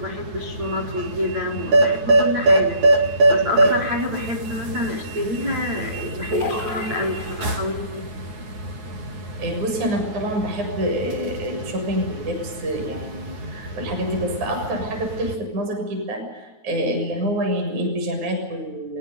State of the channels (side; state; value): left; late; 9.3 ms